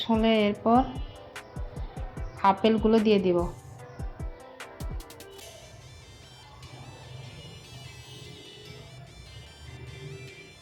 হলে এরপর আপেলগুলো দিয়ে দিব।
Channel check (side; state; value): both; identical; correlation 1.00